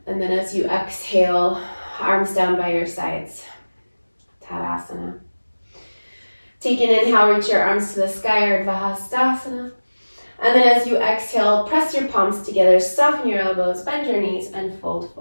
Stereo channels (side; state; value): both; inverted; correlation -1.00